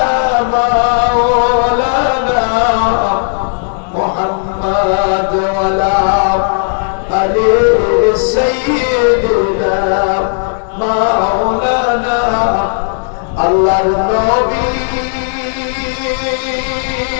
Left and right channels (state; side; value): silent; right; digital silence